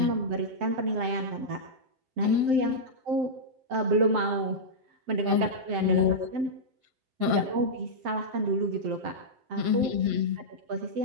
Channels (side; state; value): left; late; 7.7 ms